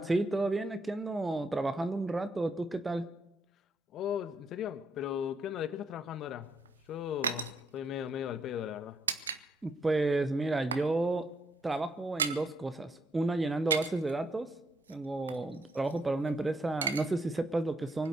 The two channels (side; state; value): both; normal; correlation 0.72